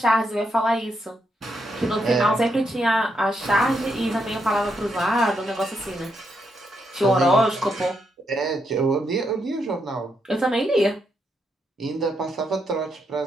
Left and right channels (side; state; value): both; normal; correlation 0.80